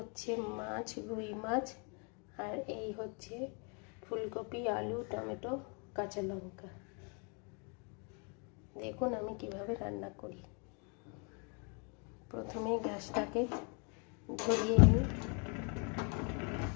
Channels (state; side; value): quieter; right; 35.9 dB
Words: মাছ, রুই মাছ, আর এই হচ্ছে ফুলকপি, আলু, টমেটো, কাঁচা লঙ্কা। দেখুন আমি কিভাবে রান্না করি। প্রথমে গ্যাসটাকে ধরিয়ে নিই।